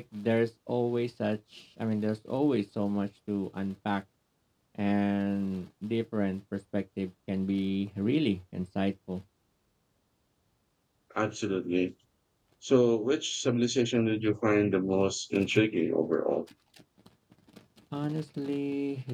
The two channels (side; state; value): both; identical; correlation 1.00